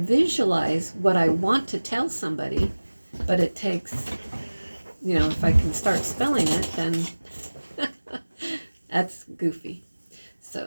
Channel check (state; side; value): inverted; both; correlation -1.00